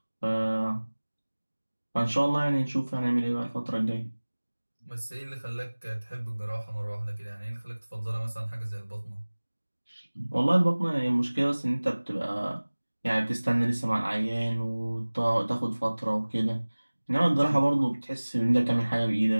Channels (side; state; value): both; inverted; correlation -1.00